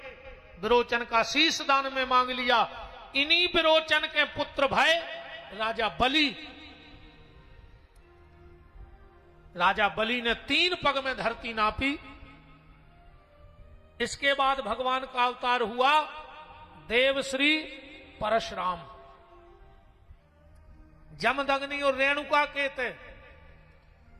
विरोचन का शीश दान में मांग लिया। इन्हीं विरोचन के पुत्र भय राजा बलि, राजा बलि ने 3 पग में धरती नापी। इसके बाद भगवान का अवतार हुआ देवश्री परशुराम। जमदग्नि और रेणुका के थे।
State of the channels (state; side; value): identical; both; correlation 1.00